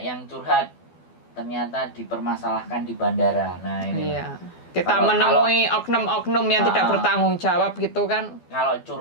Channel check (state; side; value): late; right; 12 ms